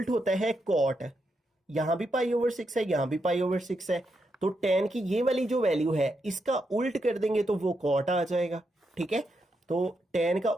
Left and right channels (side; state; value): both; normal; correlation 0.82